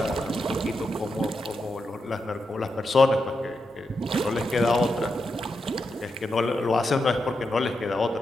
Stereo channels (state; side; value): normal; both; correlation 0.86